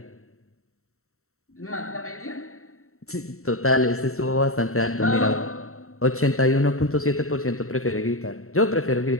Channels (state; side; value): late; right; 0.63 ms